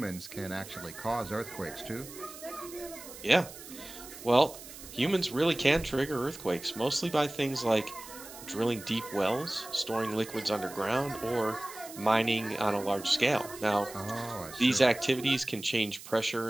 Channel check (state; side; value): noise; right; hiss, 15 dB below the sound